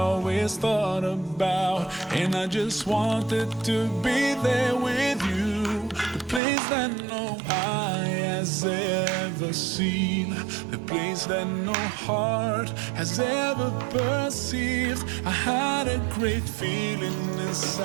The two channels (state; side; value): drops out; left; at 6.4 s